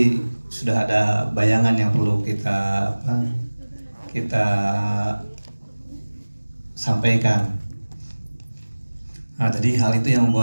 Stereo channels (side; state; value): both; inverted; correlation -1.00